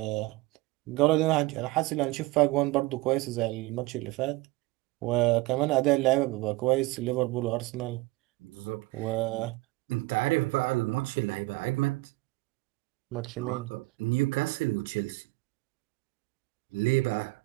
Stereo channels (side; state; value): left; quieter; 21.4 dB